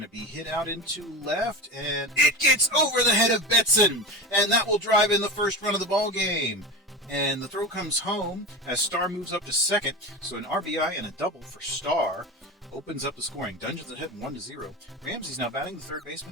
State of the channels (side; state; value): both; normal; correlation 0.25